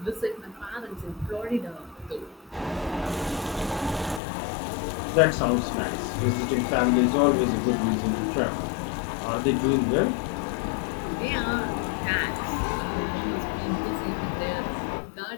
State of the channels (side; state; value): right; drops out; at 4.2 s